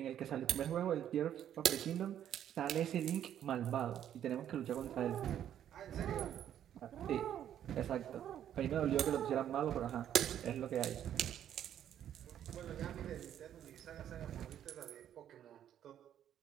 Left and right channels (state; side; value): quieter; left; 10.4 dB